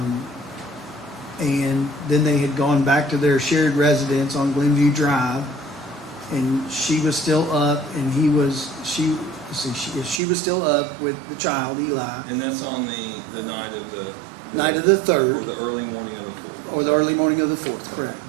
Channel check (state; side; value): drops out; left; at 10.2 s